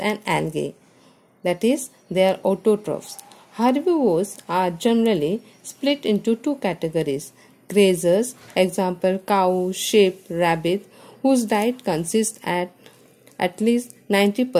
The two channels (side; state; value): both; identical; correlation 1.00